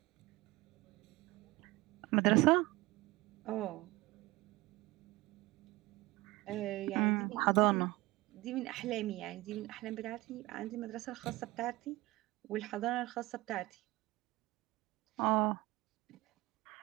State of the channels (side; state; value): left; quieter; 20.0 dB